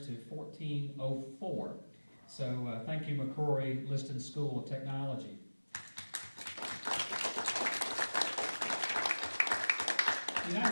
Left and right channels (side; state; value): both; inverted; correlation -1.00